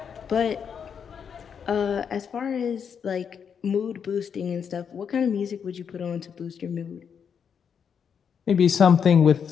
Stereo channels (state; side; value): quieter; right; 7.2 dB